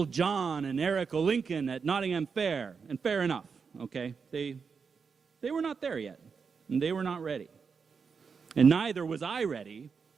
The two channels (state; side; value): quieter; left; 5.6 dB